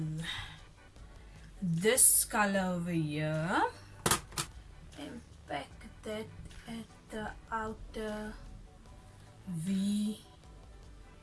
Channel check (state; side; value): identical; both; correlation 1.00